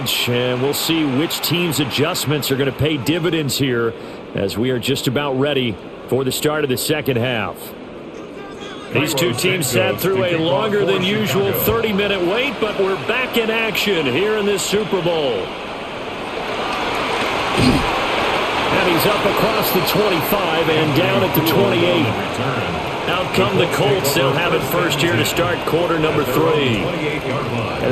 And we'll see which team's adjustments are going to pay dividends here as we are just about ready for the start of the second half. These two teams sat through a longer than usual 30-minute wait, but we're back in action here in this Super Bowl. And he's up across the 25 and down at the 28. Out come the Colts. They'll have it first here to start quarter number 3. And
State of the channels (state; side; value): identical; both; correlation 1.00